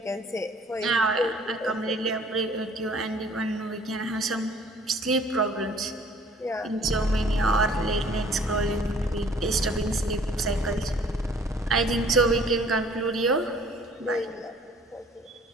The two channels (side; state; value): both; normal; correlation 0.54